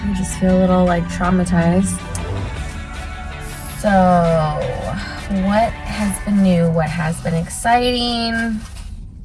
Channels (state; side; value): identical; both; correlation 1.00